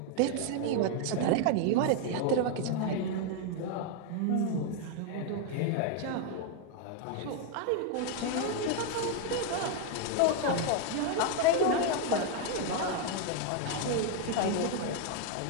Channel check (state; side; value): different; both; correlation 0.00